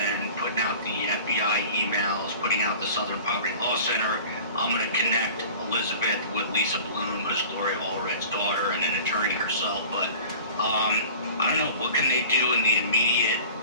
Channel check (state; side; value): inverted; both; correlation -0.43